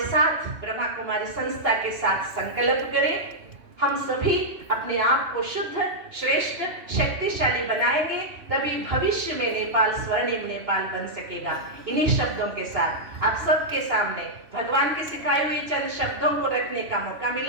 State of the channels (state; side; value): late; left; 3.2 ms